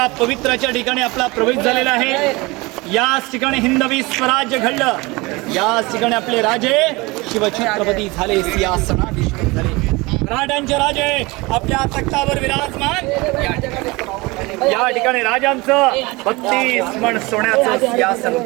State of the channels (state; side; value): quieter; left; 23.8 dB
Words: पवित्राच्या ठिकाणी आपला प्रवेश झालेला आहे. याच ठिकाणी हिंदवी स्वराज्य घडलं. याच ठिकाणी आपले राजे शिवछत्रपती झाले, सिंहासनाधीश्वर झाले. मराठ्यांचे राजे आपल्या तख्तावर विराजमान. या ठिकाणी राजांचं 32 मन सोन्याचं सिंहासन